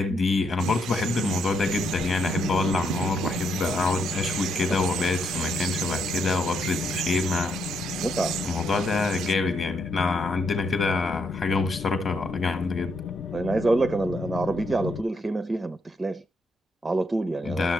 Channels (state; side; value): normal; both; correlation 0.76